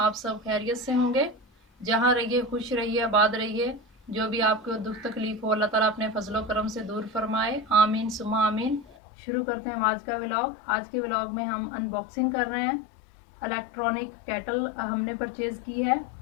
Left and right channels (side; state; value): right; drops out; at 9.0 s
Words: सब खैरियत से होंगे। जहाँ रहिए खुश रहिए, आबाद रहिए। जो भी आपको दुख तकलीफ हो अल्लाह ताला अपने फजलो करम से दूर फरमाए, आमीन सुमा आमीन। शुरू करते हैं आज का व्लॉग। आज के व्लॉग में हम अनबॉक्सिंग कर रहे हैं। इलेक्ट्रॉनिक केटल हमने परचेज़ की है